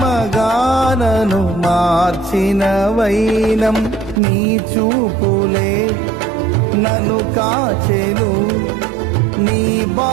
మార్చిన వైనం. నీ చూపులే నన్ను కాచెను, నీ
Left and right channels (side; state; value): left; drops out; at 4.2 s